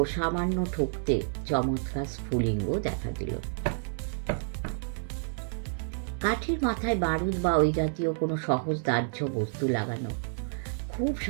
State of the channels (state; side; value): silent; left; 58 dB below the other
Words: সামান্য ঠুকতে চমৎকার স্ফুলিঙ্গ দেখা দিল। কাঠের মাথায় বারুদ বা ওই জাতীয় কোনো সহজ দাহ্য বস্তু লাগানো। খুব